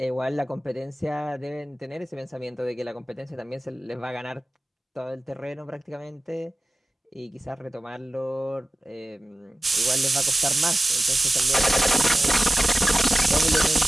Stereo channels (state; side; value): normal; both; correlation 0.96